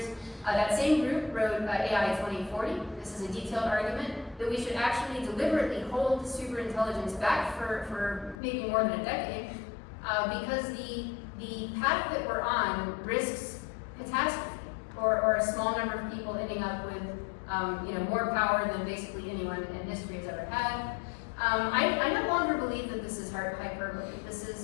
That same group wrote AI 2040. This is a detailed argument that we should actually deliberately hold superintelligence back for maybe more than a decade, because the path that we're on risks catastrophe, or a small number of people ending up with more power than basically anyone in history has ever had. I no longer believe that this is hyperbole. This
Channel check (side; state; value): right; drops out; at 8.3 s